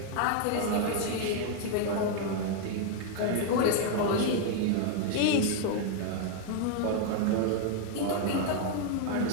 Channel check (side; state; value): both; different; correlation 0.00